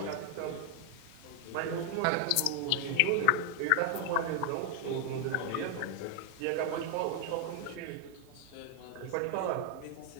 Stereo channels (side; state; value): both; different; correlation 0.00